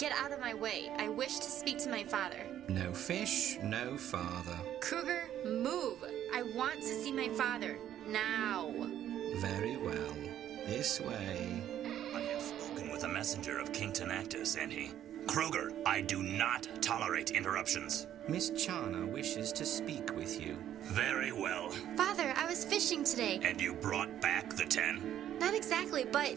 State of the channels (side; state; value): left; quieter; 11.1 dB